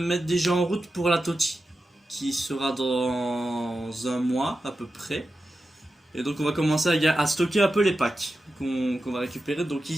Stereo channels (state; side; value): normal; both; correlation 0.91